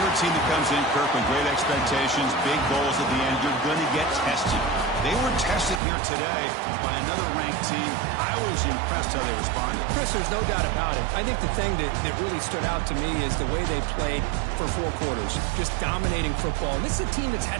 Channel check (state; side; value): drops out; left; at 5.8 s